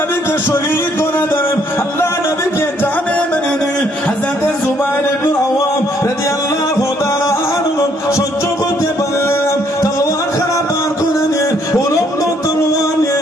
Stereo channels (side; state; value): both; normal; correlation 0.67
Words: শহীদ করে দেবেন, আল্লাহ নবীকে জানে মেনে নেবেন। হযরত জুবাইর ইবনে আওয়াম রাদিয়াল্লাহু তাআলা আনহু সহ্য করতে পারলেন, তলোয়ার খানা বার করে নিয়ে উলম্ব তলোয়ার নিয়ে